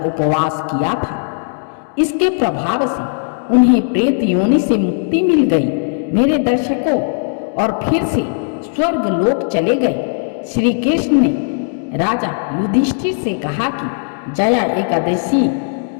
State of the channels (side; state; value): right; silent; digital silence